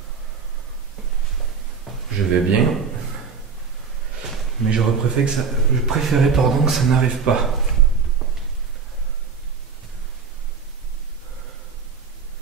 Je vais bien, mais j'aurais préféré que ça n'arrive pas.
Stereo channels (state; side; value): quieter; left; 5.6 dB